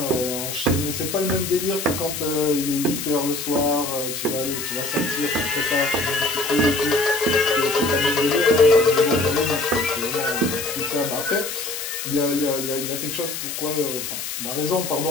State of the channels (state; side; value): noise; left; hiss, 6 dB below the sound